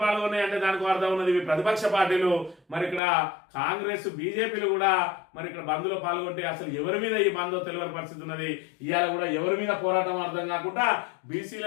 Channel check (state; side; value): drops out; right; at 3.0 s